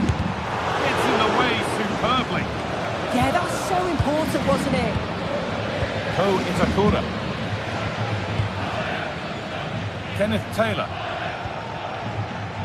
It's in the way superbly. Yeah, that was so important, wasn't it? Ko Itakura. Kenneth Taylor.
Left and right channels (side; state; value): both; identical; correlation 1.00